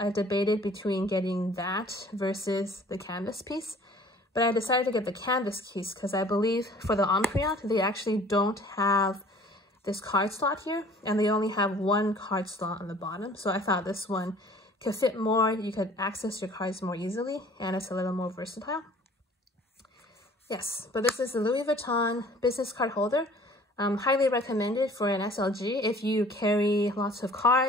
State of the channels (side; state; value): both; normal; correlation 0.51